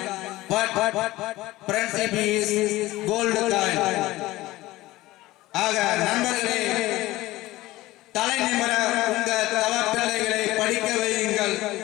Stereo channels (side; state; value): right; quieter; 17.9 dB